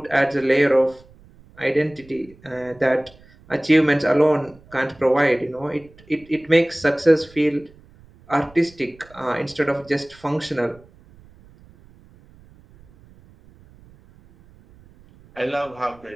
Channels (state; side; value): noise; right; rumble, 26 dB below the sound